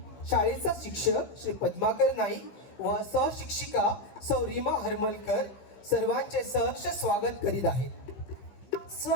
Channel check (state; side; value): late; right; 15 ms